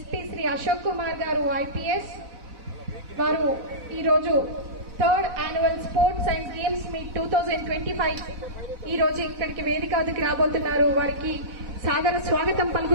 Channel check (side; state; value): left; late; 4.0 ms